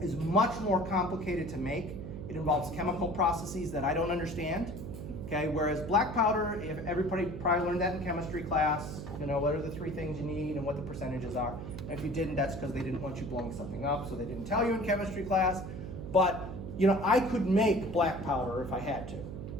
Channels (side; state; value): right; noise; hum, 8 dB below the sound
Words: much more complicated to make. It involves chemical processes that I don't understand. Okay, whereas black powder, if everybody probably learned that in chemistry class, you know, what are the 3 things you need and what the percentages are. And if you didn't, that's because they didn't want you blowing something up, so they didn't tell you in chemistry class. But, you know, I could make black powder if I had to.